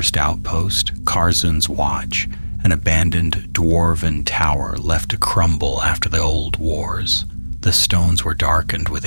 outpost, Karzun's Watch, an abandoned dwarven tower left to crumble after the old wars. The stones were darkened with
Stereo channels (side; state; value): both; inverted; correlation -1.00